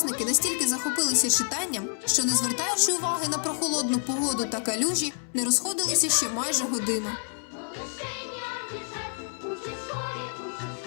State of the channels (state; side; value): silent; right; 59 dB below the other